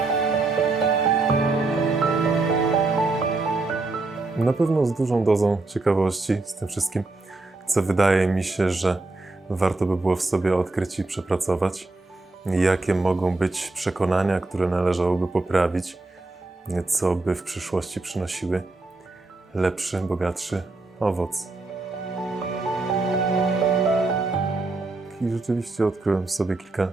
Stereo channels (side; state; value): left; quieter; 3.3 dB